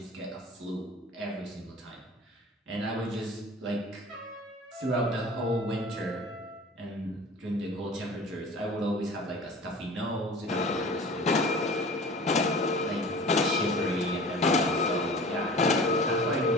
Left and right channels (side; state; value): both; normal; correlation 0.42